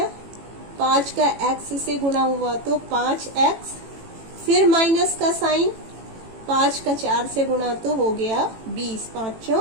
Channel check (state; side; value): late; left; 18 ms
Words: 5 का x से गुणा हुआ तो 5x। फिर माइनस का साइन। 5 का 4 से गुणा तो हो गया 20, 5